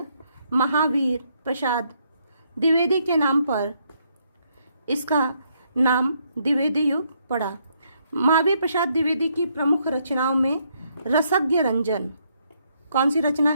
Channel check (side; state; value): both; inverted; correlation -0.73